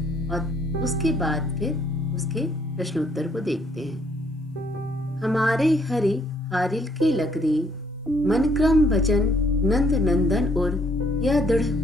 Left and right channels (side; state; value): both; normal; correlation 0.66